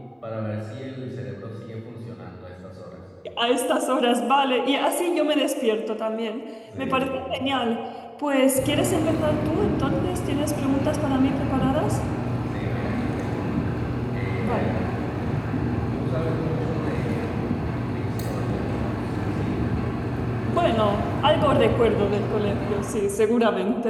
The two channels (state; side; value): identical; both; correlation 1.00